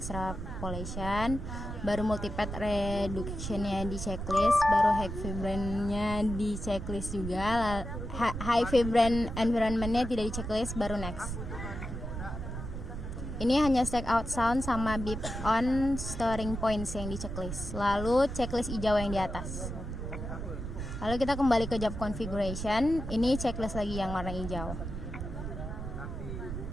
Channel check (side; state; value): right; noise; rumble, 6 dB below the sound